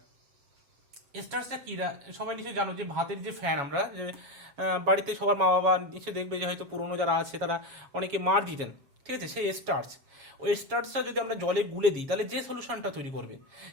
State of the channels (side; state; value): left; late; 7.2 ms